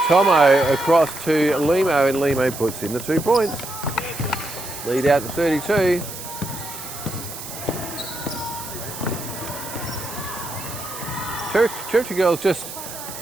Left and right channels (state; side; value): noise; right; hiss, 11 dB below the sound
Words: Tomo across to Limo, and Limo puts in the 2 points. Lead out to 32. Territory girls just,